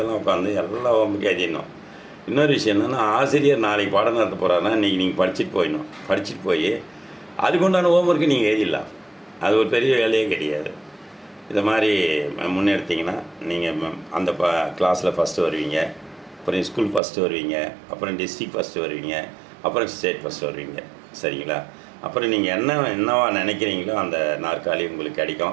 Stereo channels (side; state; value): left; drops out; at 17.0 s